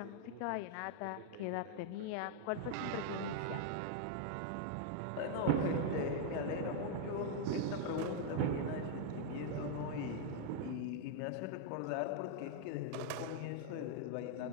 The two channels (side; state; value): both; different; correlation -0.01